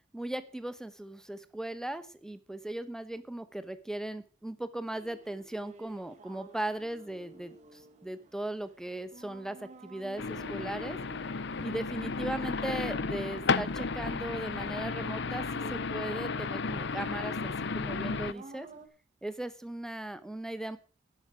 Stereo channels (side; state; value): both; normal; correlation 0.48